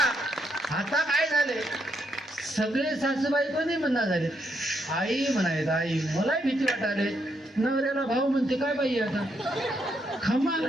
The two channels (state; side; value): normal; both; correlation 0.78